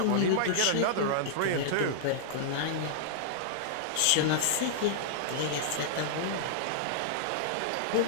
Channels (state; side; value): different; both; correlation -0.02